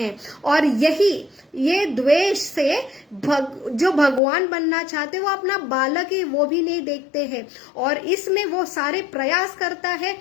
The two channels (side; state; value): right; drops out; at 4.2 s